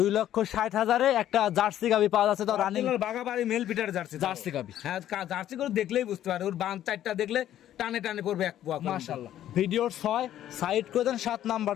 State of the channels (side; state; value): right; quieter; 11.9 dB